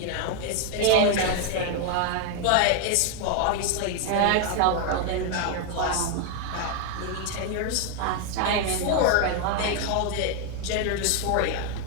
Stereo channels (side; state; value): both; different; correlation 0.01